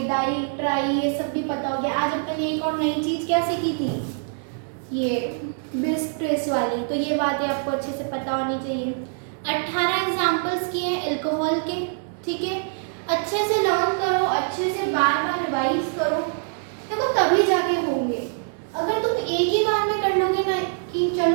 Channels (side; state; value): left; silent; digital silence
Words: डाई ट्राई ये सब भी पता हो गया। आज अपन ने एक और नई चीज क्या सीखी थी, ये बिस ट्रेस वाली। तो ये बातें आपको अच्छे से पता होनी चाहिए। 18 एग्जाम्पल्स किए हैं अल्कोहल के। ठीक है, अच्छे से लर्न करो, अच्छे से बार बार रिवाइज करो, देखो तभी जाके होंगे। अगर तुम एक ही बार में कर लोगे ना कि